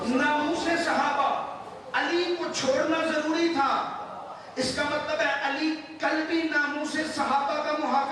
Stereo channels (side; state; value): both; identical; correlation 1.00